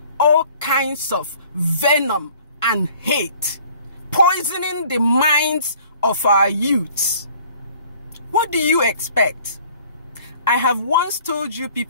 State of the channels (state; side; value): inverted; both; correlation -0.54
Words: all kinds of venom and hate, poisoning the minds of our youths. What do you expect? I have once told you